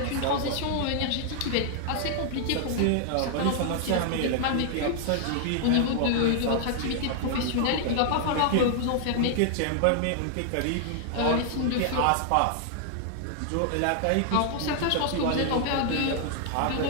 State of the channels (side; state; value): both; different; correlation -0.01